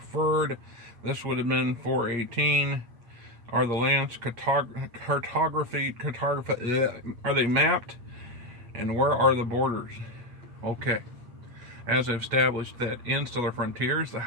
This would have been 418. Are the lands are they mapped? And where are the borders? Okay. As I've established that in Stellar Frontiers, the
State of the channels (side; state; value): left; late; 8.5 ms